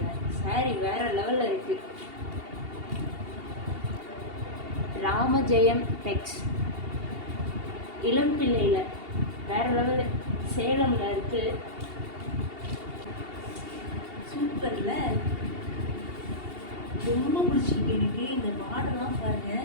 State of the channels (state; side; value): late; left; 2.8 ms